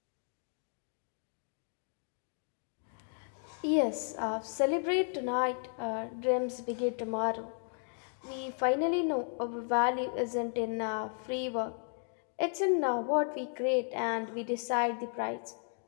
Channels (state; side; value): silent; right; 55 dB below the other